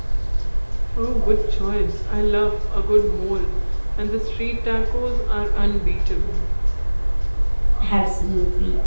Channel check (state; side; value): inverted; both; correlation -1.00